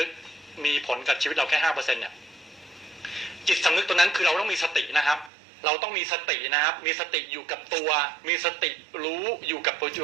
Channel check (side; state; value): left; drops out; at 5.3 s